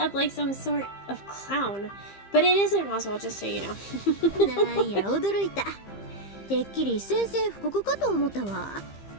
like some sort of clown. But it isn't Roswell, just so you know. なんや驚いた。てっきり宣戦布告かと思ったわ。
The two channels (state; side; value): late; right; 15 ms